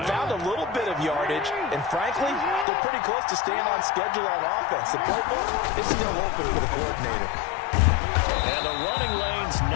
found a little bit of yardage, and frankly, they're pretty close to staying on schedule on offense. The playbook is still open for the coordinator. And the running lane's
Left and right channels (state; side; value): drops out; right; at 2.7 s